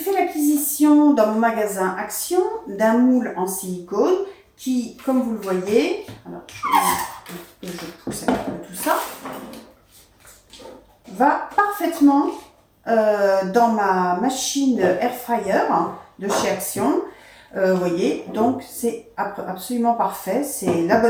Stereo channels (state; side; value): identical; both; correlation 1.00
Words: l'acquisition dans mon magasin Action d'un moule en silicone qui, comme vous le voyez, alors je pousse un peu tout ça, va parfaitement dans ma machine Air Fryer de chez Action. Vous voyez, donc c'est absolument parfait, c'est la